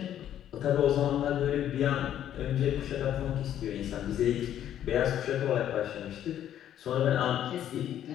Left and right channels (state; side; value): quieter; right; 10.9 dB